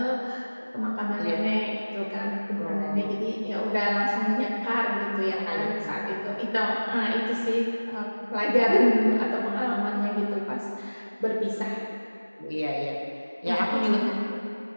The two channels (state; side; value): inverted; both; correlation -1.00